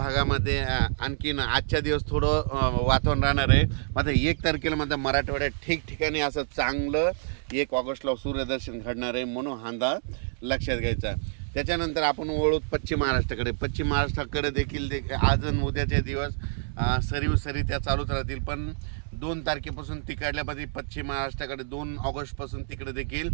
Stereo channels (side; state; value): left; silent; 60 dB below the other